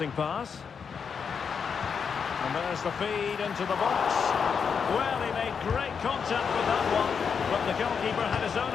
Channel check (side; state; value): right; quieter; 6.4 dB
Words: pass. And there's the feed into the box. Well, he made great contact with that one, but the goalkeeper had his own